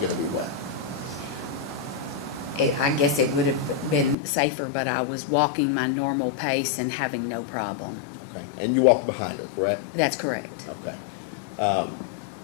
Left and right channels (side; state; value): right; drops out; at 4.2 s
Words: to be wet? I guess it would have been safer, but I was walking my normal pace and having no problem. Okay. And you walked behind her, correct? That's correct. Okay.